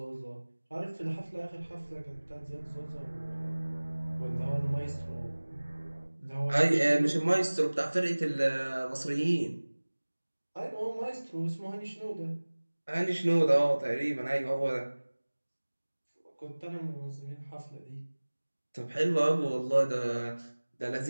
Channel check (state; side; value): inverted; both; correlation -1.00